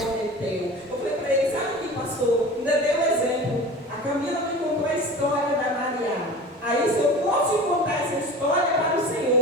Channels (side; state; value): both; normal; correlation 0.36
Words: Eu falei para ele: sabe o que passou? Ainda deu um exemplo. A Camila me contou a história da Mariana. Aí, se eu posso contar essa história para o